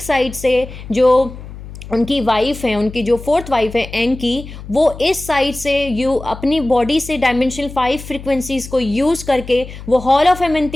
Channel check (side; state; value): left; noise; hum, 13 dB below the sound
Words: साइड से जो उनकी वाइफ है, उनकी जो फोर्थ वाइफ है एंकी, वो इस साइड से अपनी बॉडी से डायमेंशनल 5 फ्रिक्वेंसीज को यूज़ करके वो हॉल ऑफ